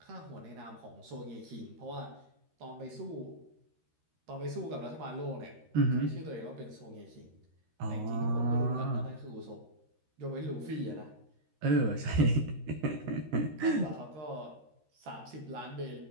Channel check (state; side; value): late; left; 13 ms